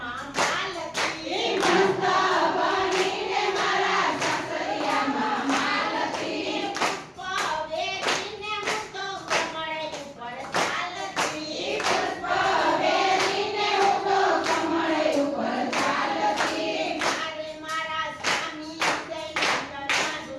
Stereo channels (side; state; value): both; identical; correlation 1.00